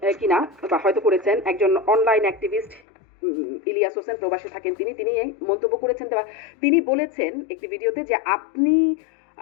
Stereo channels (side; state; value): right; drops out; at 2.8 s